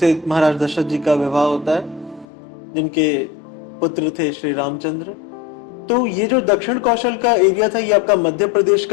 महाराज दशरथ जी का विवाह होता है, जिनके पुत्र थे श्री रामचंद्र। तो ये जो दक्षिण कौशल का एरिया था, ये आपका मध्य प्रदेश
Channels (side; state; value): right; drops out; at 2.2 s